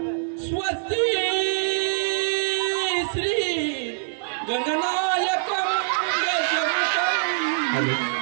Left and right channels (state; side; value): silent; left; digital silence